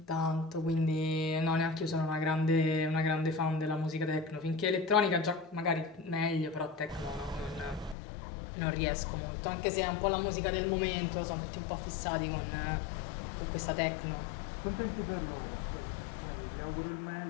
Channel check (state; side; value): drops out; right; at 8.0 s